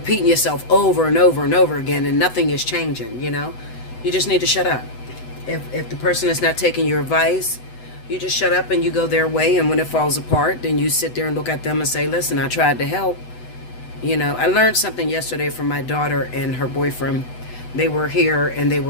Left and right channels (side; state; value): right; late; 8.0 ms